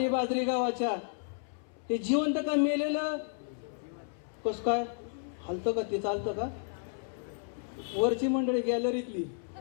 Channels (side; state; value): right; silent; 56 dB below the other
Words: बाजरी गावाच्या हे जिवंत का मेलेलं कस काय हलतं का ते चालतं का वरची मंडळी गॅलरीतली